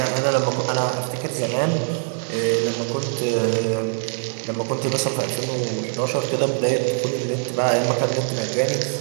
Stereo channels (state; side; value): silent; left; digital silence